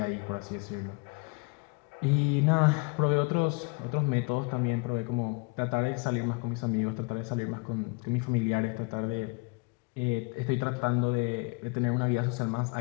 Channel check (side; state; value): right; quieter; 31.4 dB